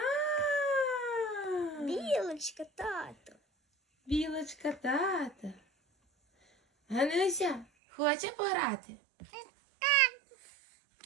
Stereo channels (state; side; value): drops out; left; at 7.7 s